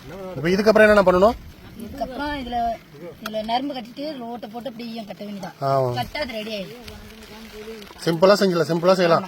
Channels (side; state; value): both; identical; correlation 1.00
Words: இதுக்கப்புறம் என்ன பண்ணணும்? இதுக்கப்புறம் இதுல நரம்பு கட்டிட்டு ரோட்டை போட்டு அப்படி கட்ட வேண்டியதான். கட்டா அது ரெடி ஆயிடும். சிம்பிளா செஞ்சலாம், சிம்பிளா செய்யலாம்.